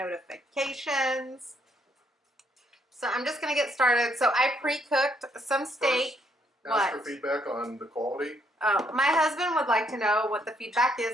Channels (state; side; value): normal; both; correlation 0.71